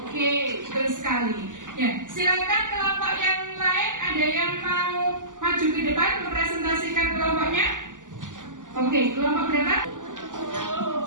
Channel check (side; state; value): left; late; 0.87 ms